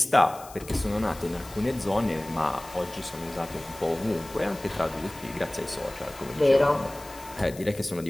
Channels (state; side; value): noise; left; hiss, 18 dB below the sound